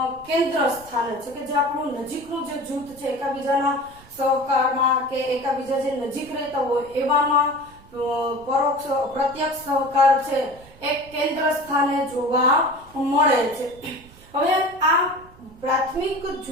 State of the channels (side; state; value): right; noise; rumble, 23 dB below the sound